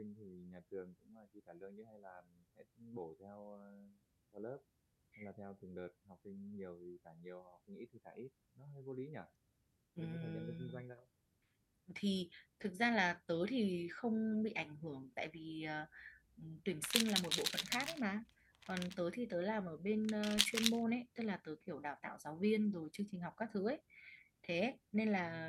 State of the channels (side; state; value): both; identical; correlation 1.00